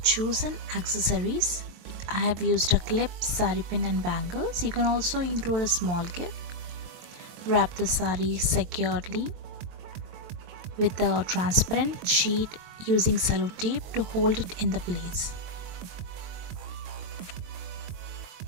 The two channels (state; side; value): late; left; 23 ms